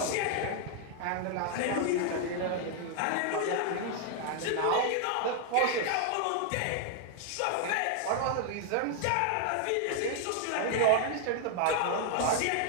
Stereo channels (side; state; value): both; different; correlation 0.00